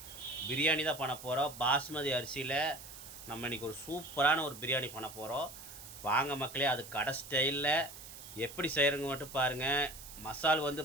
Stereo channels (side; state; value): right; noise; hiss, 14 dB below the sound